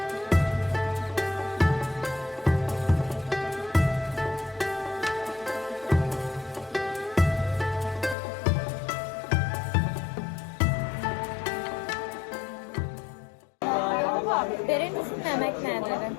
برنجشون نمک نداره.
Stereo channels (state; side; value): drops out; right; at 8.2 s